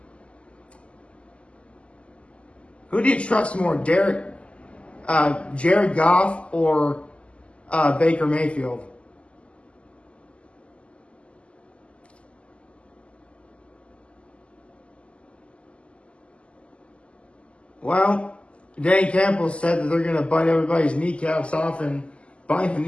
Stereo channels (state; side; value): late; right; 0.057 ms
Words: Who do you trust more, Jared Goff or Baker Mayfield? Well, Dan Campbell said that they're going to bite everybody's kneecaps off, and biting the